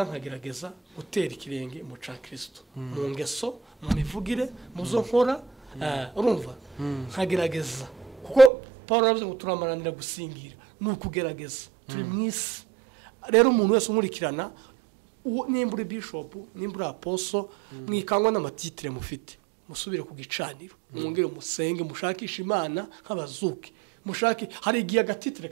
nkagerageza gutera ikirenge mu ca Kristo mu ngeso mu mivugire mu zo nkora urumva nkagerageza kuko Paul yavuze ngo turamaranira gusingira nukugerageza turi mwisi rero umuntu wese umurikirana nimbura bishop nimbura apostle mwikangwa n'amatitire mufite musubire ku gicaniro mwongere musenge mushakisha imana nk'abazuki mushaki hari igihe agatitire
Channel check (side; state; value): left; drops out; at 8.5 s